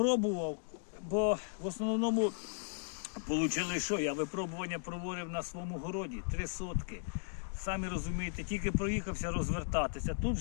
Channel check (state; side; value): silent; right; digital silence